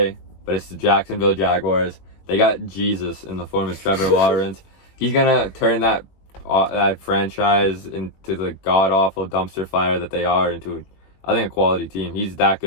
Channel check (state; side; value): late; right; 21 ms